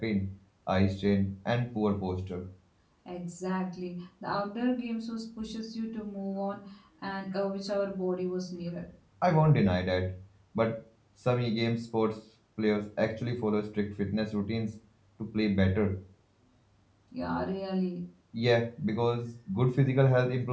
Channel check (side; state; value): both; identical; correlation 1.00